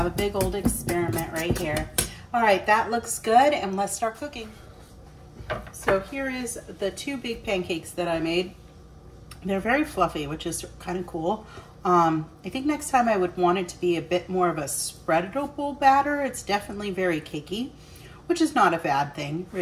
a big old experiment right here. All right, that looks good and let's start cooking. So here is the 2 big pancakes that I made. They're very fluffy, which is kind of cool. I think next time I would want it to be a bit more of a spreadable batter. It's definitely very cakey, which is not a bad thing,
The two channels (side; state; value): both; identical; correlation 1.00